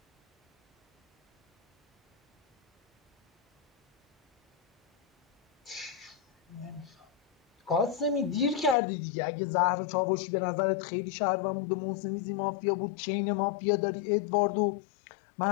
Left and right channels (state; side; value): drops out; right; at 8.8 s